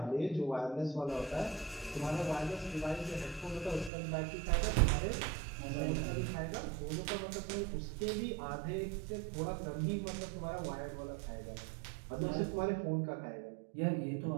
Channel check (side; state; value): left; drops out; at 3.9 s